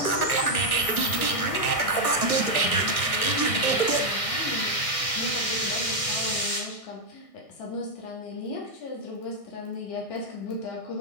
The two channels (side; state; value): right; late; 1.6 ms